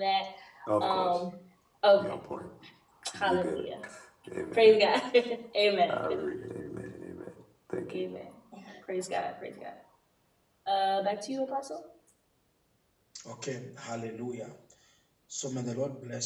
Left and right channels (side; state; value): both; identical; correlation 1.00